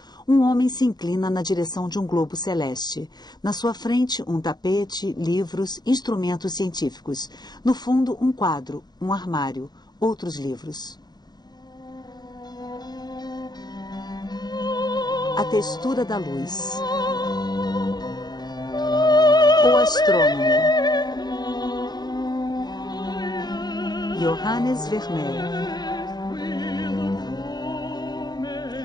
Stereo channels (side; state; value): right; late; 0.20 ms